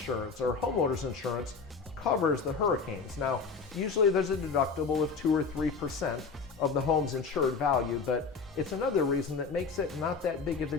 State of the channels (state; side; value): quieter; right; 4.9 dB